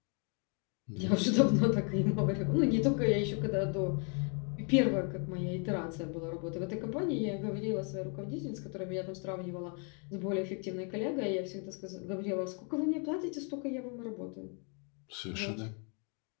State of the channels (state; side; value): quieter; right; 38.7 dB